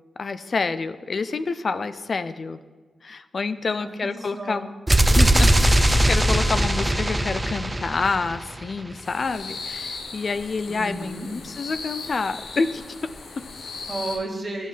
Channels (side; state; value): both; normal; correlation 0.93